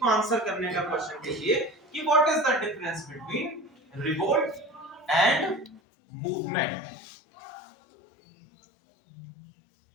को आंसर करने का क्वेश्चन कीजिए कि what is the difference between revolt and movement.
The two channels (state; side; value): drops out; right; at 5.8 s